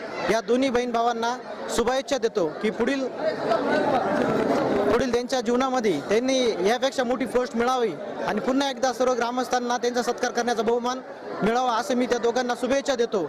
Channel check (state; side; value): identical; both; correlation 1.00